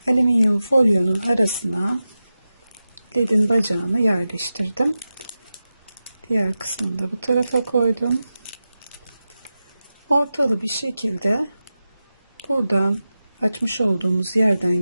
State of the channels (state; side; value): inverted; both; correlation -0.93